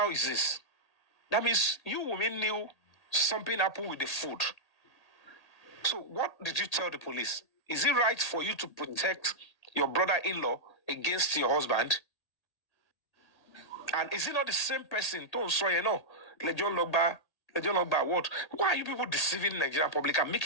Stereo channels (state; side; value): late; right; 1.8 ms